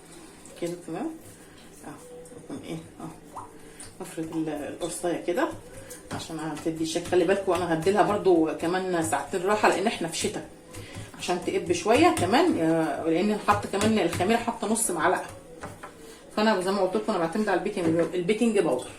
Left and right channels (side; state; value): both; identical; correlation 1.00